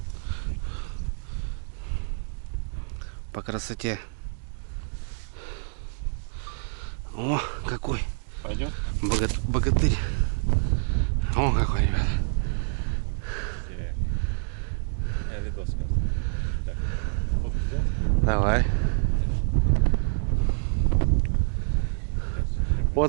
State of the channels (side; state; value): left; silent; digital silence